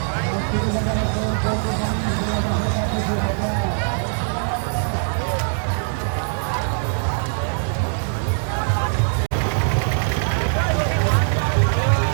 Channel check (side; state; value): left; silent; digital silence